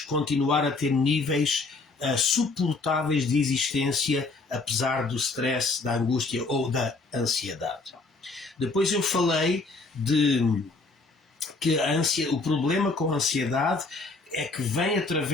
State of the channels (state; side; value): quieter; right; 3.7 dB